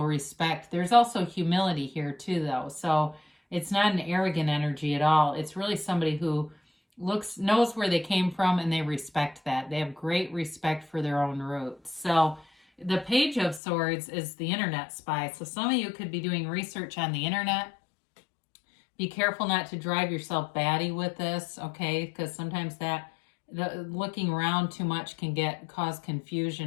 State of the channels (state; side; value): drops out; right; at 13.6 s